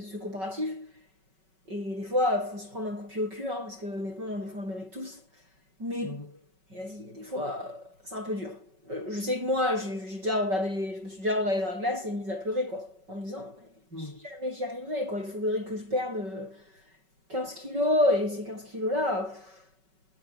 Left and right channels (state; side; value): late; left; 5.3 ms